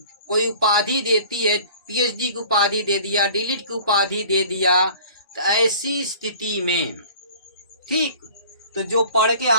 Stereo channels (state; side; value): inverted; both; correlation -0.47